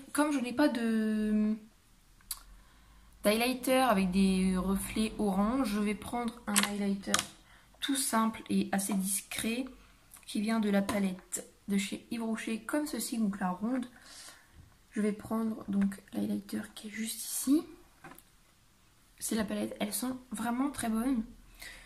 comme je n'ai pas de d'highlighter avec des reflets orange, je vais prendre un highlighter tout simple et assez discret qui vient de la palette de chez Yves Rocher comme ceci, donc la ronde. Je vais prendre donc l'highlighter qui est juste ici. C'est la palette, elles sont vraiment très bonnes.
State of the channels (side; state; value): both; identical; correlation 1.00